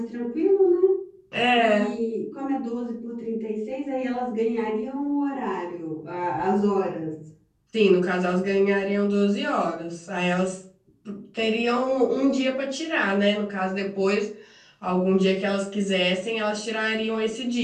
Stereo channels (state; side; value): identical; both; correlation 1.00